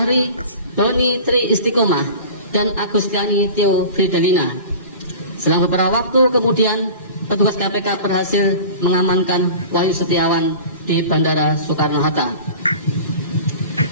Doni Tri Istiqomah, dan Agustiani Tio Fidelina. Selama beberapa waktu kemudian, petugas KPK berhasil mengamankan Wahyu Setiawan di Bandara Soekarno-Hatta.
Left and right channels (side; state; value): both; inverted; correlation -0.38